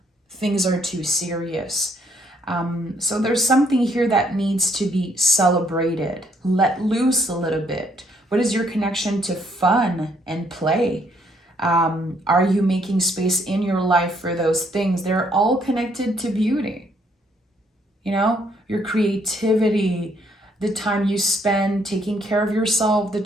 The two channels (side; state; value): both; normal; correlation 0.69